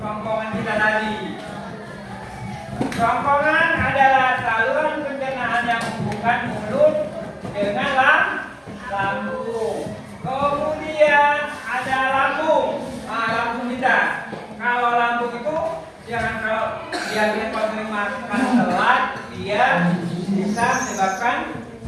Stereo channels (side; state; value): both; identical; correlation 1.00